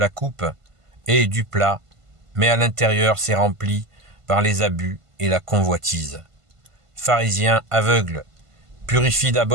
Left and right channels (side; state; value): left; late; 1.5 ms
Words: coupe et du plat, mais à l'intérieur c'est rempli par les abus et la convoitise. Pharisiens aveugles, purifie